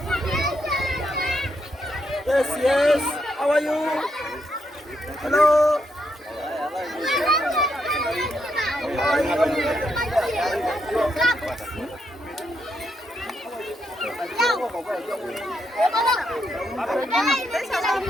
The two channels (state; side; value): normal; both; correlation 0.79